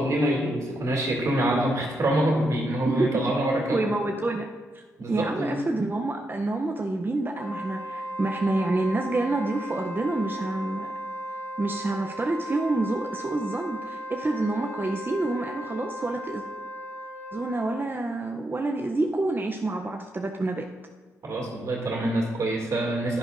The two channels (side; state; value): both; normal; correlation 0.84